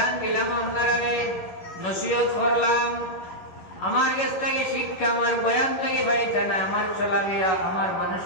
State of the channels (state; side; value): late; right; 11 ms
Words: দিলাম, আপনারা নসিহত করলাম, আমার কাছ থেকে শিক্ষা আমার বয়ান থেকে পাইতে না, আমার চলাফেরা, আমার